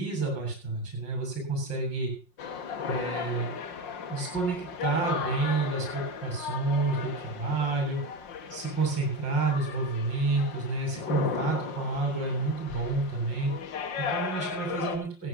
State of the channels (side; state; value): right; late; 5.6 ms